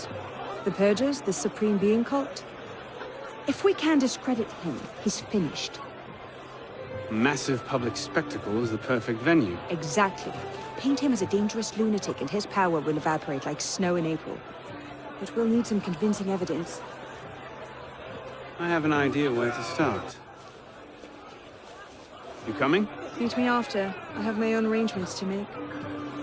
The Purgers, the Supreme Being cult. If we can discredit him, he's finished. Massive public spectacle is the perfect venue. Exactly. Paint him as a dangerous lunatic and his power will evaporate like snow in April. But we'll need some convincing evidence. I have an idea where to start. You coming? Meet me after. I have my own arrangements to make.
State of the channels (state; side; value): identical; both; correlation 1.00